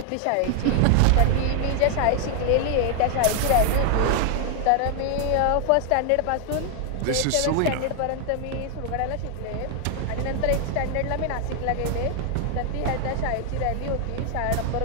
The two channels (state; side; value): different; both; correlation 0.00